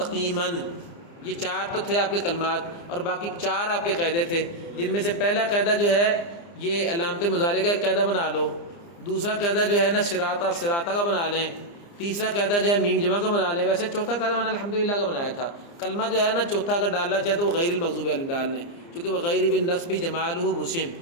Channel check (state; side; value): late; right; 29 ms